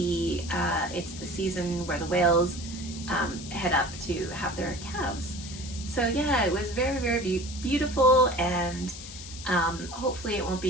season where the whales head up to have their calves. So yeah, it was very beautiful, and hopefully it won't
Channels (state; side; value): noise; left; hiss, 12 dB below the sound